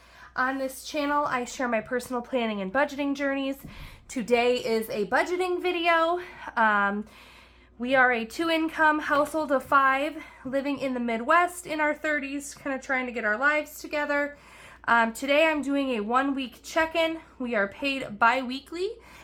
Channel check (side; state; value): both; identical; correlation 1.00